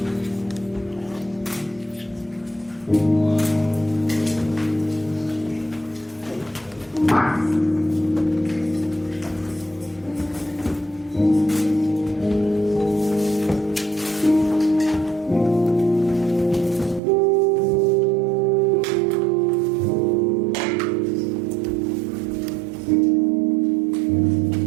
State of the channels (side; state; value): left; drops out; at 17.0 s